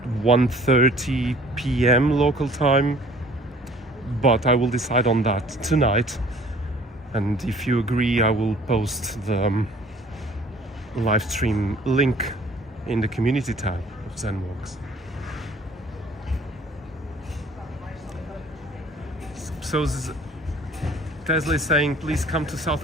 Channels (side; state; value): both; normal; correlation 0.53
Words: 1:30 p.m. local time, but I will decide on that tonight, and if you agree, I will post the live stream link in the community tab of Zenwalks. So Tesla is saying, please come to